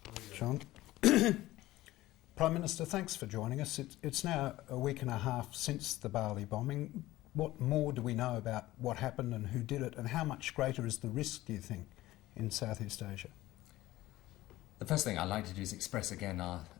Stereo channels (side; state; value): right; quieter; 16.7 dB